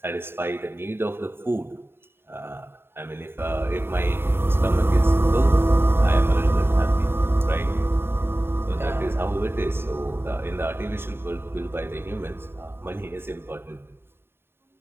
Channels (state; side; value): late; left; 0.11 ms